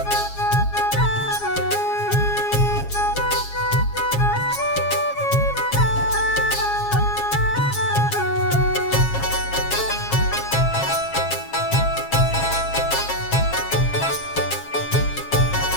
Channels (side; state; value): right; late; 7.4 ms